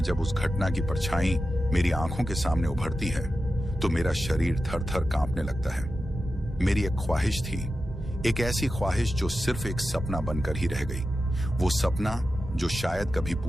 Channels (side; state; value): both; normal; correlation 0.92